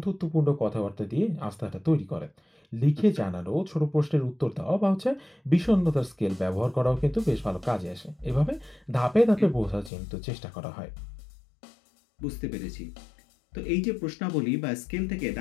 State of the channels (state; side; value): drops out; right; at 9.9 s